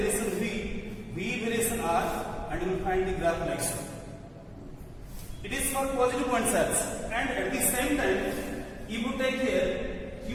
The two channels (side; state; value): both; identical; correlation 1.00